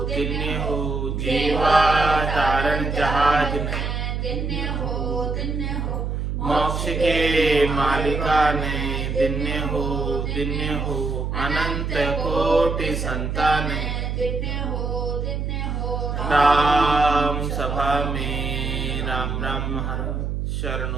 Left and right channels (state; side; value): noise; right; hum, 2 dB below the sound